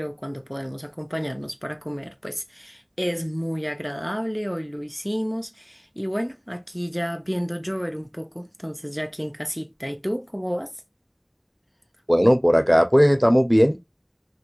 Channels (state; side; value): identical; both; correlation 1.00